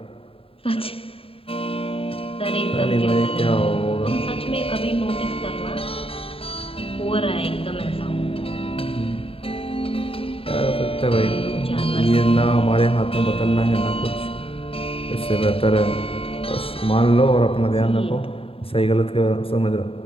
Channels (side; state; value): right; late; 0.27 ms